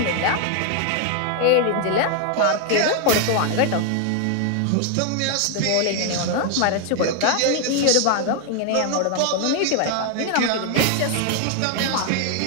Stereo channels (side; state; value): both; different; correlation 0.00